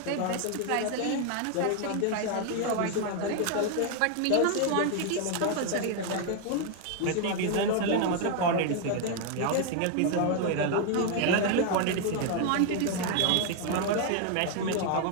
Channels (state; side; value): different; both; correlation 0.00